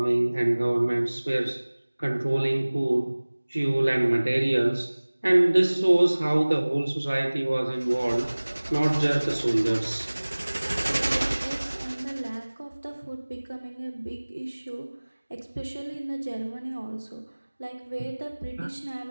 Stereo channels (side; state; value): both; inverted; correlation -1.00